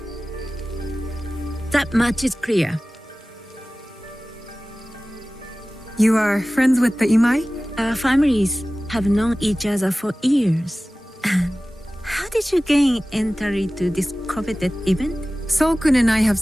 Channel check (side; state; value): both; normal; correlation 0.97